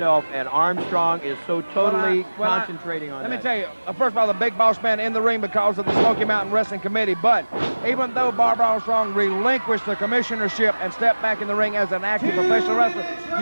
and Armstrong is so totally concentrating on that. Let me tell you, first of all, the big boss man in the ring because of the Smoky Mountain Wrestling Committee, but even though Bob Armstrong relinquished the commissionership and stepped back in the ring as an active professional wrestler,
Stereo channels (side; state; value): both; inverted; correlation -1.00